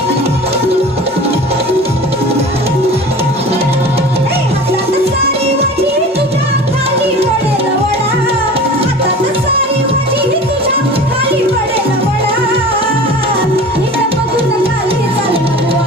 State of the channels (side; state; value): both; normal; correlation 0.38